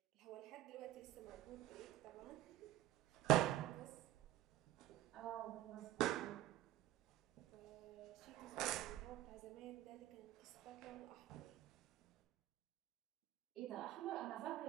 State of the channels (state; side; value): quieter; left; 14.3 dB